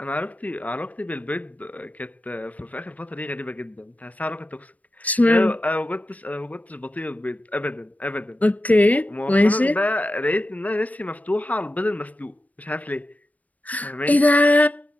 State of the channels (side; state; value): right; late; 0.073 ms